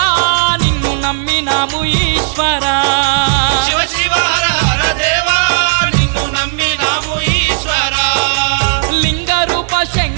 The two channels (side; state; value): left; silent; digital silence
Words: నిన్ను నమ్మినాము ఈశ్వరా శివ శివ హర హర దేవా నిన్ను నమ్మినాము ఈశ్వరా లింగ రూప